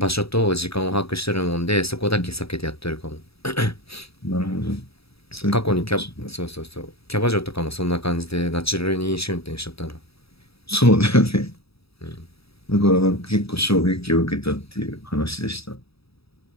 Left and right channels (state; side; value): late; right; 0.77 ms